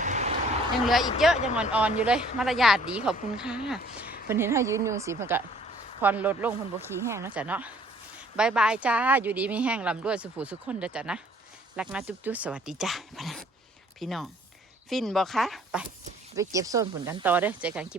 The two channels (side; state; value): both; normal; correlation 0.57